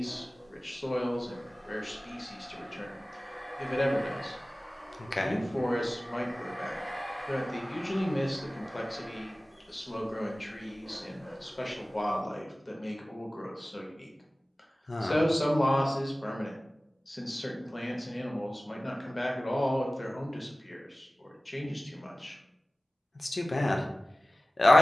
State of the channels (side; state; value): both; normal; correlation 0.97